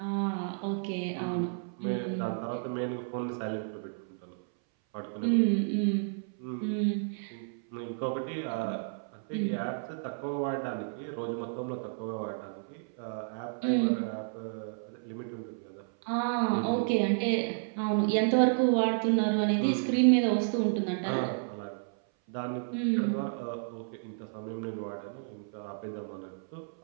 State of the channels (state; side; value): silent; left; 57 dB below the other